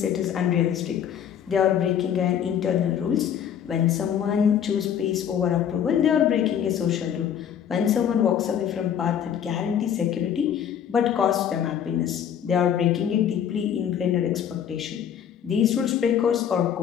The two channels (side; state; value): right; quieter; 9.0 dB